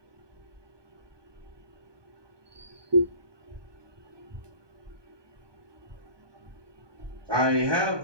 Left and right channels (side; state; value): left; late; 1.2 ms